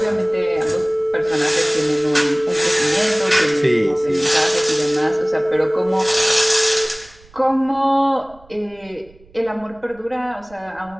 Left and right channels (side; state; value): right; noise; rumble, 27 dB below the sound